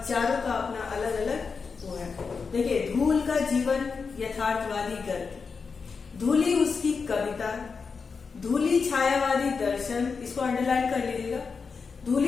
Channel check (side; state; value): right; quieter; 5.2 dB